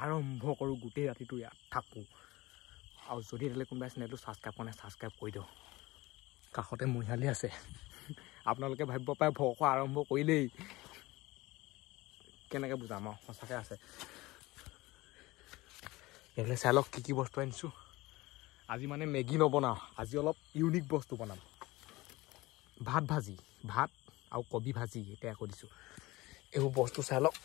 আৰম্ভ কৰো গুটেই ৰাতিটো ইয়াত থাকো আৰু যদি এলে কোনবা চেনেলটো সাবস্ক্ৰাইব কৰে সাবস্ক্ৰাইব কৰি দিও কাখতে মহিয়ালি আছে আপোনালোকে ভাবিব পায় ভক আৰম্ভ কৰিলেই কেনেকৈ বুজাম সঁচাকৈ আছে এলে চালক কি বস্তু আনিছো আজি মানে মেগি নবনাও আজি অলপ ইউনিক বস্তু বনাম ভাত ভাজি ভাত আৰু কবি ভাজি এটা কৰিছো এই বস্তু চালক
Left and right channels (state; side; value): quieter; right; 20.2 dB